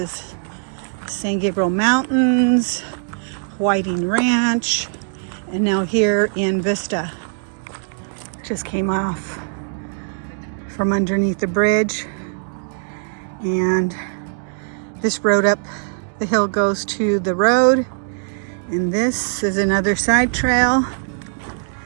San Gabriel Mountains, Whiting Ranch, and now here in Vista. Just came off from underneath the bridge, and this road up the hill goes to the road, and this is another side trail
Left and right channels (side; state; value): left; silent; digital silence